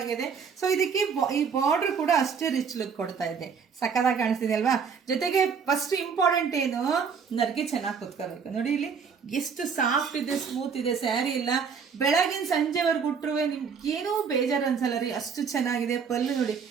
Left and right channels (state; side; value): quieter; left; 6.2 dB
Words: ಸೊ ಇದಕ್ಕೆ ಈ ಬಾರ್ಡರ್ ಕೂಡ ಅಷ್ಟೇ ರಿಚ್ ಲುಕ್ ಕೊಡ್ತಾ ಇದೆ. ಸಕ್ಕದಾಗಿ ಕಾಣಿಸ್ತಿದೆ ಅಲ್ವಾ? ಜೊತೆಗೆ ಫಸ್ಟ್ ಇಂಪಾರ್ಟೆಂಟ್ ಏನು, ನರ್ಗೆ ಚೆನ್ನಾಗಿ ಕುತ್ಕೋಬೇಕು. ನೋಡಿ ಇಲ್ಲಿ ಎಷ್ಟು ಸಾಫ್ಟ್ ಇದೆ, ಸ್ಮೂತ್ ಇದೆ ಸ್ಯಾರಿ. ಇಲ್ಲ ಬೆಳಗಿನ ಸಂಜೆವರೆಗೂ ಉಟ್ರುವೆ ನಿಮ್ಗೆ ಏನೂ ಬೇಜಾರು ಅನ್ಸಲ್ಲ ರೀ, ಅಷ್ಟು ಚೆನ್ನಾಗಿದೆ. ಪಲ್ಲು ನೋಡಿ,